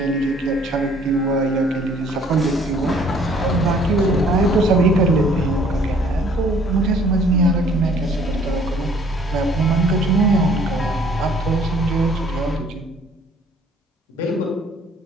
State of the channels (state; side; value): normal; both; correlation 0.58